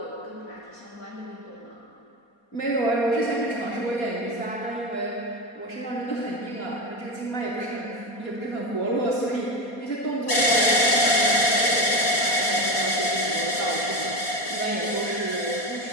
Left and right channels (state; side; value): late; right; 4.2 ms